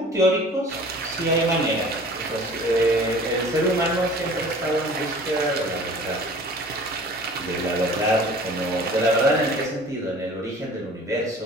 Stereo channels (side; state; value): both; normal; correlation 0.46